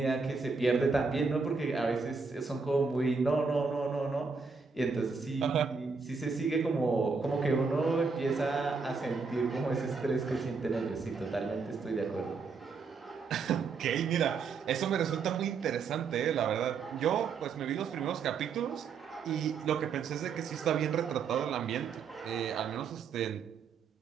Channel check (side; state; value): left; quieter; 5.0 dB